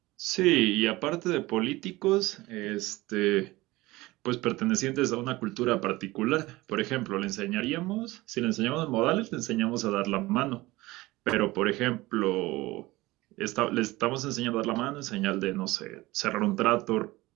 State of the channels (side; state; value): left; quieter; 19.8 dB